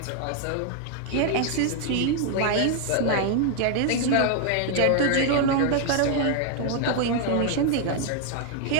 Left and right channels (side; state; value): both; different; correlation 0.00